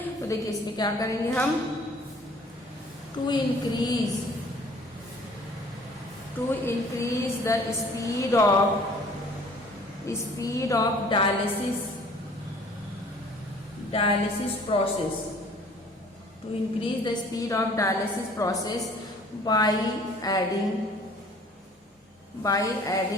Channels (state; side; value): normal; both; correlation 0.53